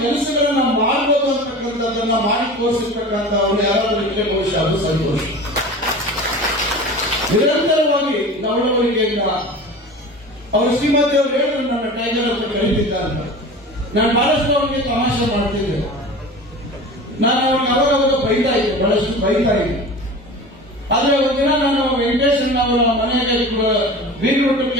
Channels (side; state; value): both; normal; correlation 0.35